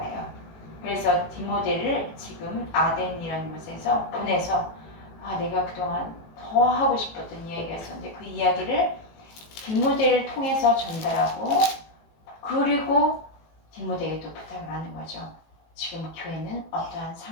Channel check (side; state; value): right; late; 18 ms